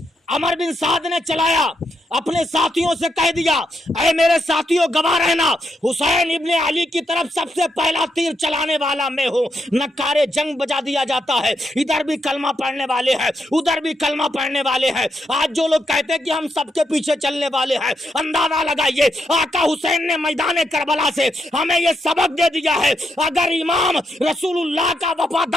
अमर बिन साद ने चलाया, अपने साथियों से कह दिया, ऐ मेरे साथियों गवाह रहना, हुसैन इब्ने अली की तरफ सबसे पहला तीर चलाने वाला मैं हूँ। नक्कारे जंग बजा दिया जाता है। इधर भी कलमा पढ़ने वाले हैं, उधर भी कलमा पढ़ने वाले हैं। आज जो लोग कहते हैं कि हम सबके पीछे चलने वाले हैं, अंदाजा लगाइए, आका हुसैन ने मैदान करबला से हमें ये सबक दे दिया है, अगर इमाम रसूलुल्लाह का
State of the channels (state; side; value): normal; both; correlation 0.81